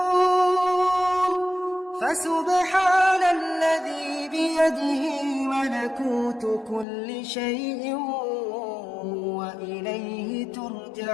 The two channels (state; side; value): drops out; right; at 6.9 s